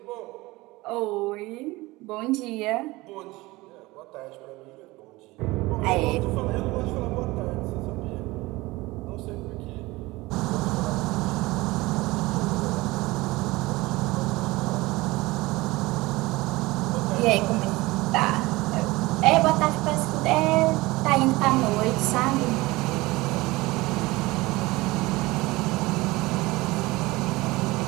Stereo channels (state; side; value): quieter; left; 20.9 dB